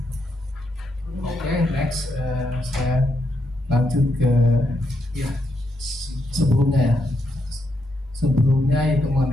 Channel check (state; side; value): normal; both; correlation 0.80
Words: oke, next saya lanjut ke ya sebelumnya ya. Sebelumnya itu